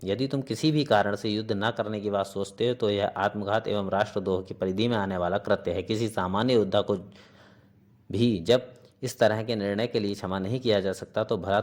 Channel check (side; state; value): both; identical; correlation 1.00